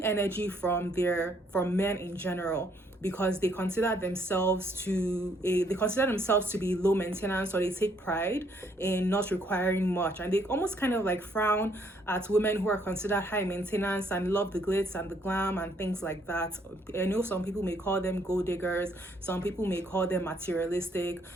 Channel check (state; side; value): normal; both; correlation 0.68